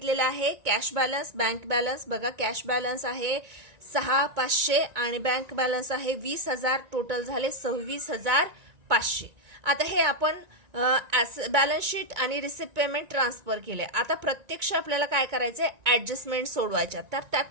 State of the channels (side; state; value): left; late; 2.2 ms